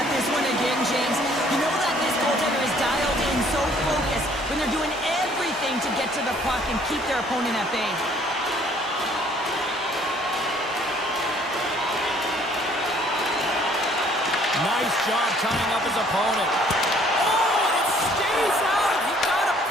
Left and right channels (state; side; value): normal; both; correlation 0.60